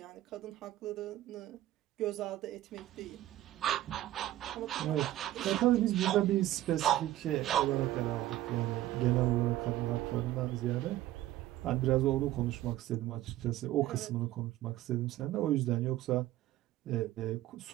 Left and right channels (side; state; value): left; quieter; 14.5 dB